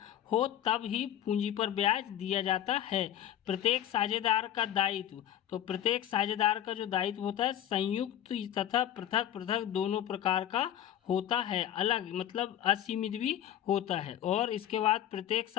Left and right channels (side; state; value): right; quieter; 11.1 dB